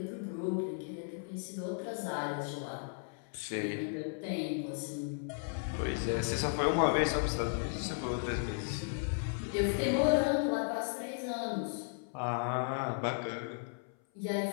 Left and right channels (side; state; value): right; silent; 54 dB below the other